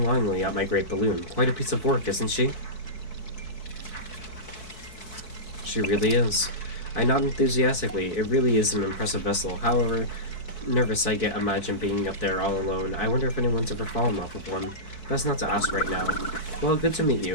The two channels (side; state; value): right; late; 4.6 ms